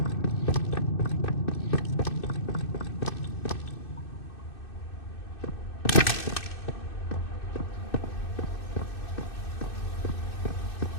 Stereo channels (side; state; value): right; late; 2.6 ms